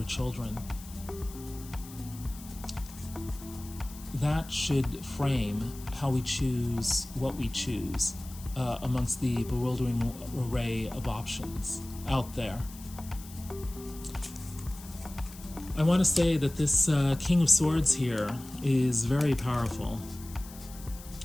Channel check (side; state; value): left; noise; hiss, 17 dB below the sound